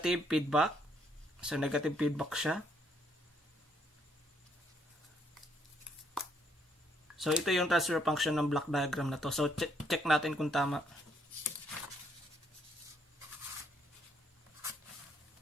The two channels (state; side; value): normal; both; correlation 0.70